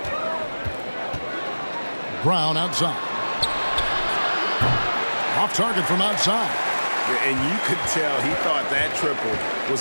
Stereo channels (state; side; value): inverted; both; correlation -1.00